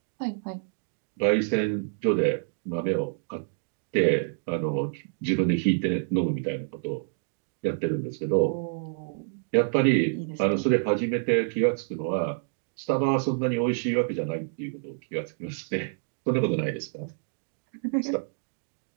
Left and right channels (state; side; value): silent; left; digital silence